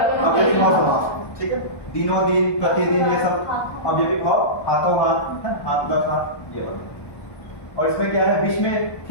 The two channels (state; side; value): late; right; 1.2 ms